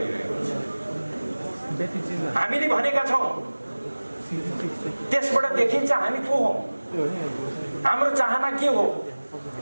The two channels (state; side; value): inverted; both; correlation -1.00